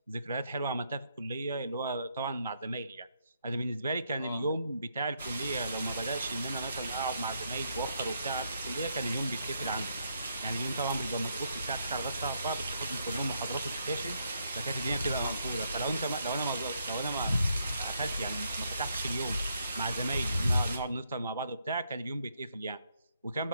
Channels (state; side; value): inverted; both; correlation -0.76